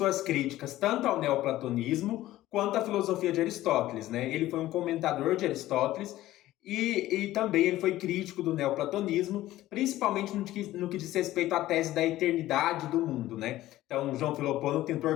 críticas tanto ao neoplatonismo quanto à filosofia de Aristóteles, né? Ele foi um comentador de Aristóteles e também ele foi crítico do neoplatonismo, principalmente no que diz respeito à tese da eternidade do mundo, né? Então, João Filopono tentou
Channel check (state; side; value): quieter; right; 15.4 dB